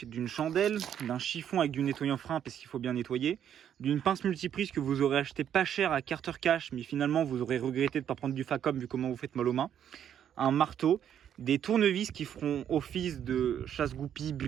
d'une chandelle, d'un chiffon avec du nettoyant frein parce qu'il faut bien nettoyer, d'une pince multiprise que vous aurez acheté pas cher à Carter Cash, mais finalement vous aurez regretté de ne pas prendre du Facom vu comment vous faites mal aux mains, un marteau, des tournevis qui feront office de chasse-goupilles,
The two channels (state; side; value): quieter; left; 9.5 dB